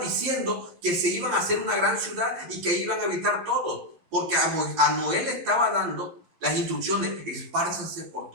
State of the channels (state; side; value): late; left; 12 ms